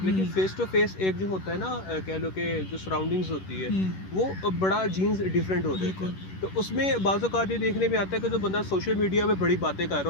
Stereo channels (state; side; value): late; right; 11 ms